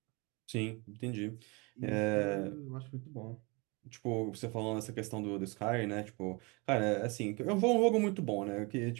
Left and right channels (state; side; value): quieter; left; 28.5 dB